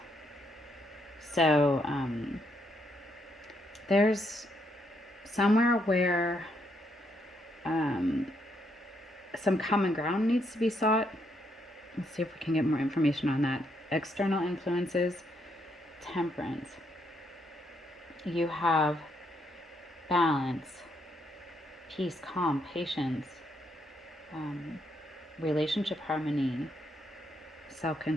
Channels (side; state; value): both; normal; correlation 0.76